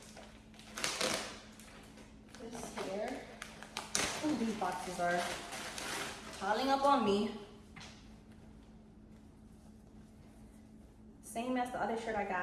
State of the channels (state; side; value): identical; both; correlation 1.00